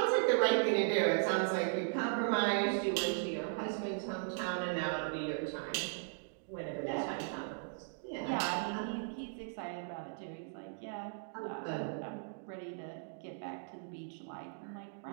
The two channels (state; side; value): silent; left; digital silence